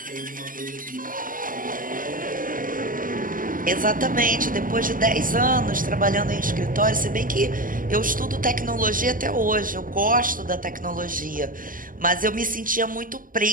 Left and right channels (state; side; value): late; left; 0.40 ms